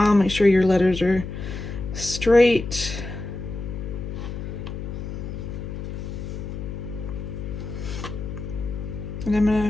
make sure your letters are straight. And I'm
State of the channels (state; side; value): noise; left; hum, 7 dB below the sound